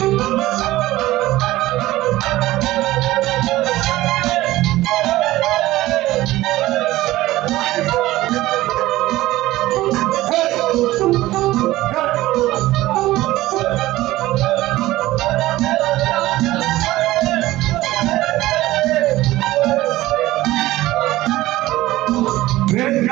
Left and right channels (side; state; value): left; quieter; 16.9 dB